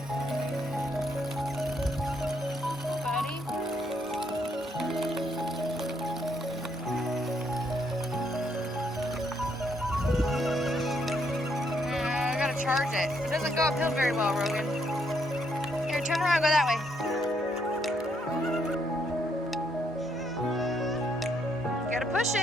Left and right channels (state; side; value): normal; both; correlation 0.73